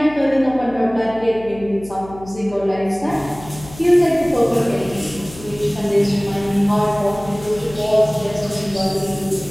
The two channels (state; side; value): noise; left; hum, 18 dB below the sound